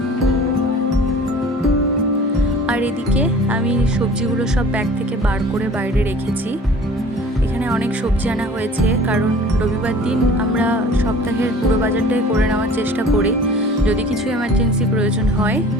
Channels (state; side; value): normal; both; correlation 0.46